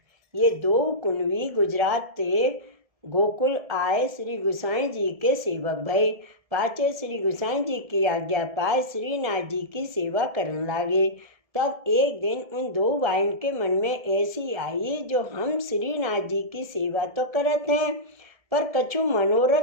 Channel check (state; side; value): late; left; 1.7 ms